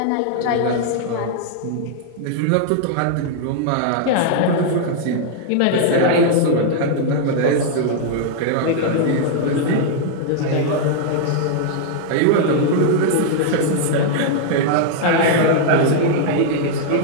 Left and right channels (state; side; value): different; both; correlation -0.01